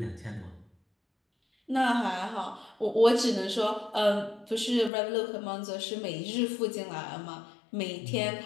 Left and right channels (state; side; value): drops out; right; at 4.9 s